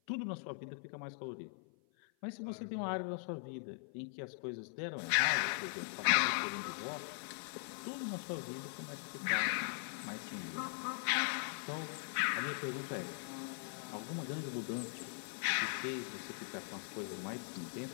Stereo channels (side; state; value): right; silent; 51 dB below the other